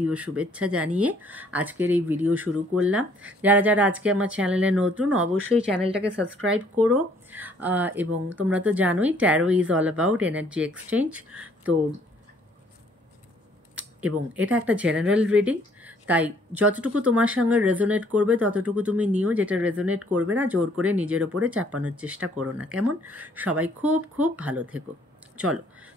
ও শুভেচ্ছা জানিয়ে আজকের এই ভিডিও শুরু করলাম। যারা যারা আজকে আমার চ্যানেলে নতুন, অবশ্যই চ্যানেলটাকে সাবস্ক্রাইব করো। এবং তোমরা তো জানোই taro is all about energy exchange. তো এবং এটা একটা জেনারেল রিডিং, তাই যতটুকু তোমার সঙ্গে রেজোনেট করবে ততটুকু তুমি নিও, যেটা রেজোনেট করবে না জোর করে নিজের ওপরে চাপানোর চেষ্টা করো না, কেমন? সবাই খুব খুব ভালো থেকো। চলো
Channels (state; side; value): normal; both; correlation 0.62